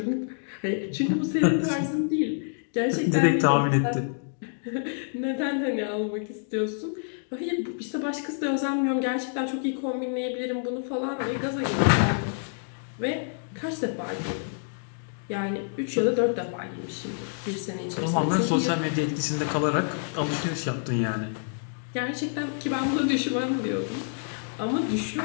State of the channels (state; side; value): silent; right; digital silence